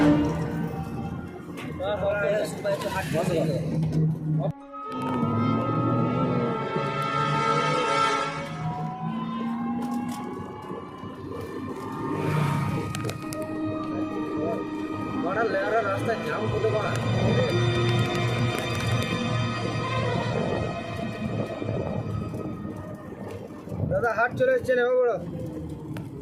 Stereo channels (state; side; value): identical; both; correlation 1.00